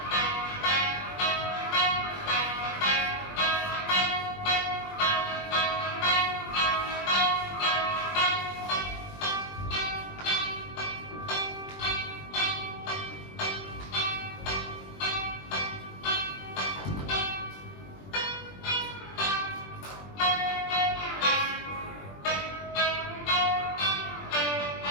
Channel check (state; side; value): late; right; 20 ms